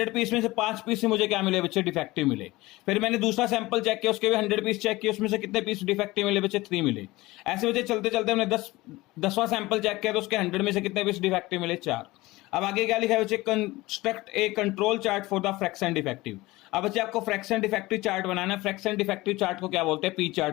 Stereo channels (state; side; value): quieter; right; 20.0 dB